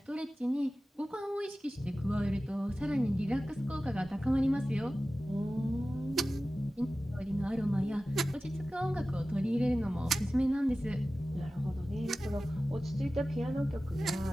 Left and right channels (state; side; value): normal; both; correlation 0.96